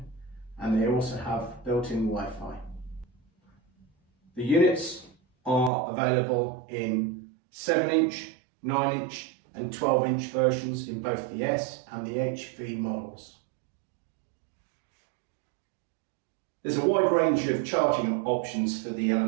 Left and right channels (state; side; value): drops out; left; at 5.7 s